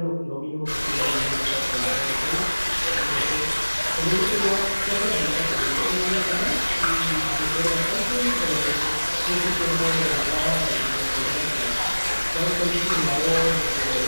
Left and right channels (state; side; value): inverted; both; correlation -1.00